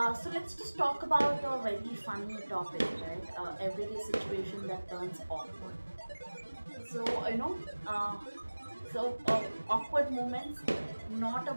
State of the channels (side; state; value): both; inverted; correlation -1.00